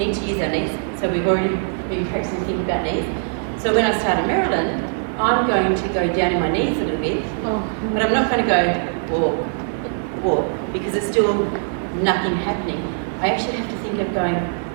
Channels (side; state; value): left; silent; 58 dB below the other